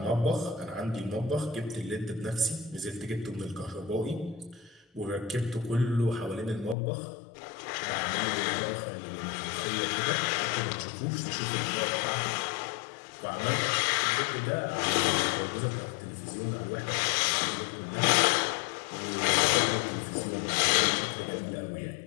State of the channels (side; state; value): right; drops out; at 6.8 s